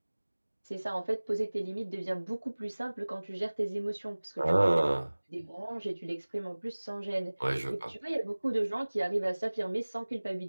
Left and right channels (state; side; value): inverted; both; correlation -1.00